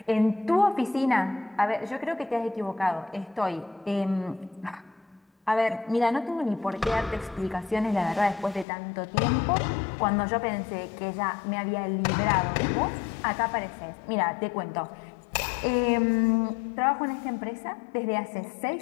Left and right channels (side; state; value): right; drops out; at 8.7 s